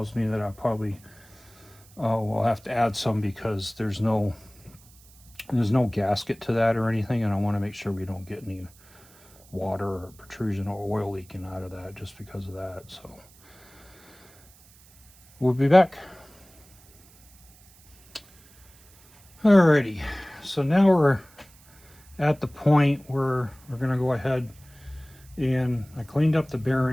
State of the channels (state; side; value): noise; right; hiss, 26 dB below the sound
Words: me that I probably will have to add some, because there's no gasket to that or anything, and I want to make sure we don't get any water or protrusion or oil leaking out of that just because of that. So we'll be back. Alrighty, so now we're at the point where we're going to go ahead, and I cleaned up the